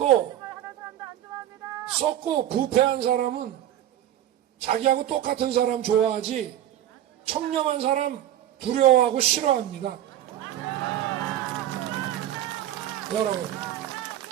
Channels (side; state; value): left; quieter; 12.0 dB